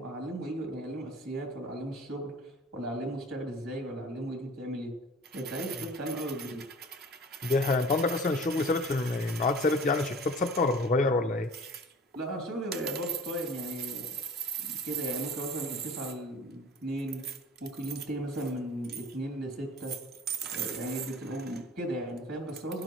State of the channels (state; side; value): normal; both; correlation 0.43